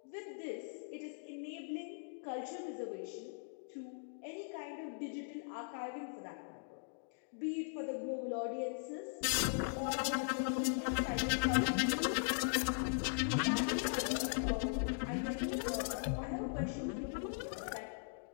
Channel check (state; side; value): silent; right; digital silence